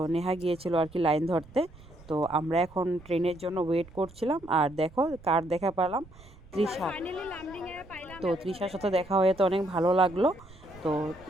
নেহা গিয়েছিল আর কি লাইন ধরতে। তো আমরা এখন ট্রেনের জন্য ওয়েট করছিলাম। আর দেখো কার দেখা পেলাম, তৃষা। তো তৃষার সাথে দেখা হয়ে তো অনেক ভালো লাগলো। তো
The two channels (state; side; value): noise; right; rumble, 22 dB below the sound